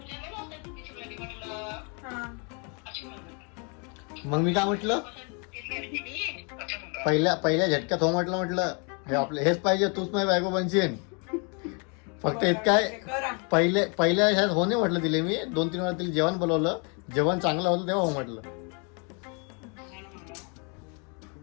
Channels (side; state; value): right; quieter; 35.5 dB